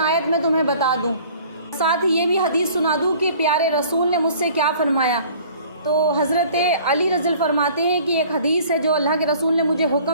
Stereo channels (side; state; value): both; inverted; correlation -0.51